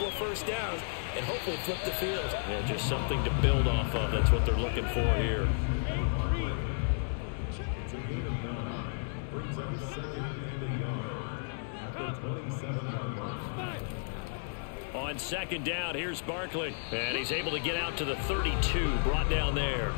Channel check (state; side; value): silent; right; 56 dB below the other